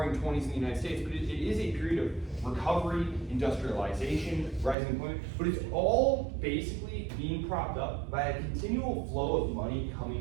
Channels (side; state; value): left; drops out; at 4.8 s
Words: 20s in the United States, but it is a period of recovery, industrialization, rising employment, but it's all basically being propped up by a continual flow of money